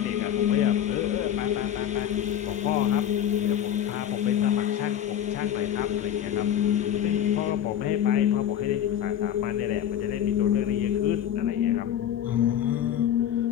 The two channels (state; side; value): quieter; right; 10.3 dB